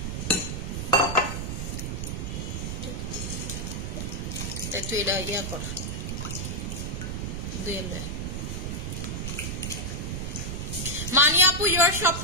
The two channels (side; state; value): right; noise; rumble, 3 dB below the sound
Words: একটু এটা ইয়া কর দুইলে। মানি আপু ইউর সব